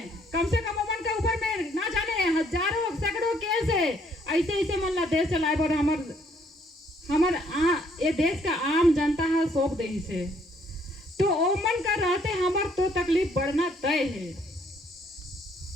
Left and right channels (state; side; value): normal; both; correlation 0.66